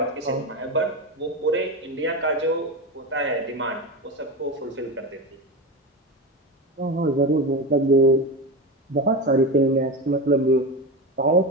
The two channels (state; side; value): normal; both; correlation 0.20